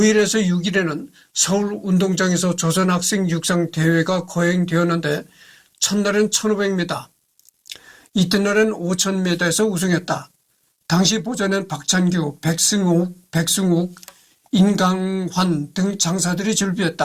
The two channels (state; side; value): identical; both; correlation 1.00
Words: 6일에는 서울 운동장에서 조선학생 육상 대회가 거행되었는데 첫날은 1500m, 이튿날은 5000m에서 우승했다. 당시 보전엔 박찬규, 백승욱, 인강환 등 장사들이